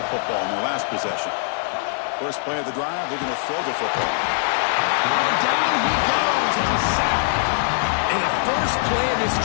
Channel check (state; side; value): silent; right; digital silence